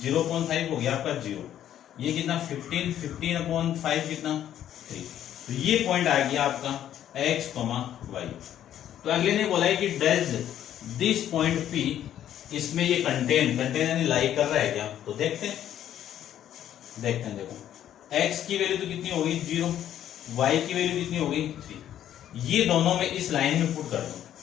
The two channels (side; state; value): right; quieter; 11.0 dB